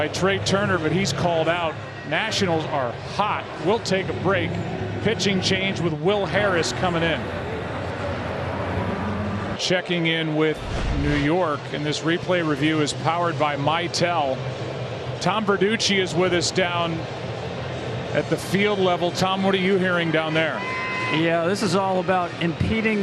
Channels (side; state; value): both; identical; correlation 1.00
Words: Trey Turner, but he's called out. Nationals are hot. We'll take a break. Pitching change with Will Harris coming in. Checking in with New York, and this replay review is powered by Mitel. Tom Verducci is with us down at the field level. Tom, what are you hearing down there? Yeah, this is all about impeding